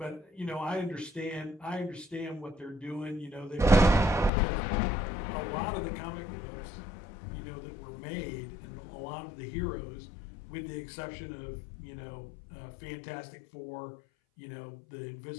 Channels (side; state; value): right; drops out; at 4.3 s